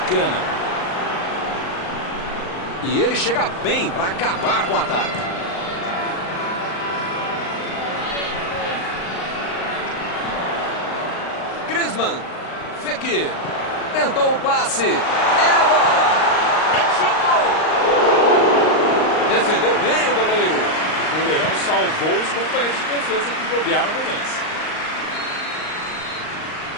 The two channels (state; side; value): late; right; 38 ms